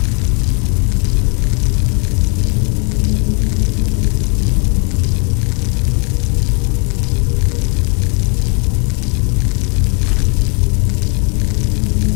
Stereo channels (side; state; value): right; quieter; 36.3 dB